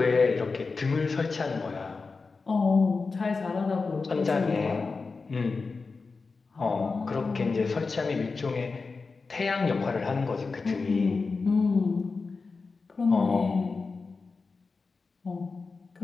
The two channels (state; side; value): quieter; right; 4.3 dB